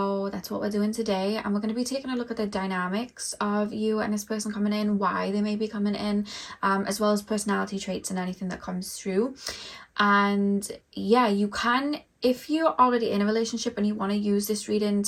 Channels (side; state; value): both; identical; correlation 1.00